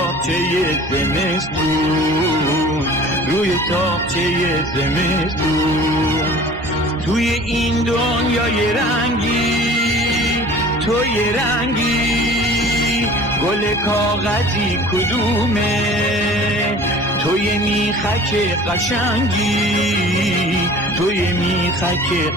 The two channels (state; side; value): normal; both; correlation 0.45